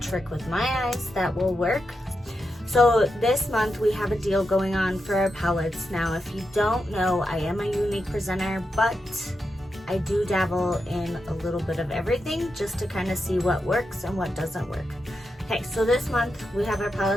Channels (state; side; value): normal; both; correlation 0.87